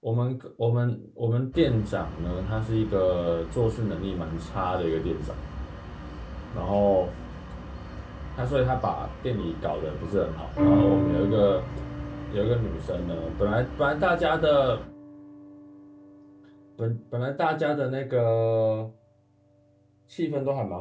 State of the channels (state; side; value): identical; both; correlation 1.00